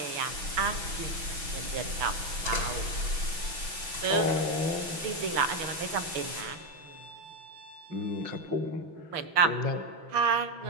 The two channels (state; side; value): late; left; 6.1 ms